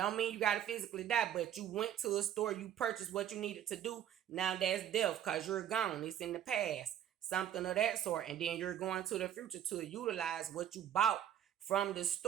mean you got to physically die, but you went to a store, you purchased what you needed to do. Now that's death, because you're gone. It's in the past, something of that sort. And then you're going to the future to utilize what you bought from the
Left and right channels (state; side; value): quieter; left; 10.4 dB